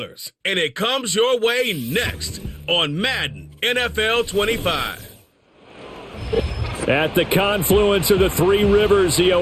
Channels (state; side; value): identical; both; correlation 1.00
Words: and it comes your way next on Madden NFL 25. At the confluence of the three rivers, the